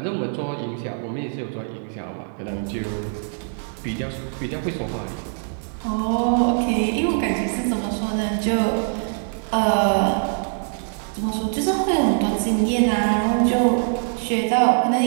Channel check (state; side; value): silent; left; digital silence